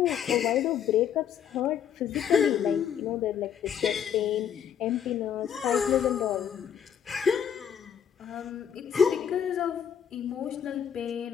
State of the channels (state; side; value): quieter; right; 8.5 dB